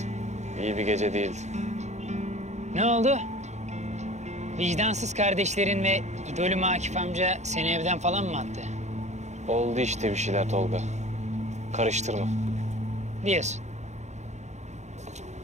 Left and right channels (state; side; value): late; left; 0.33 ms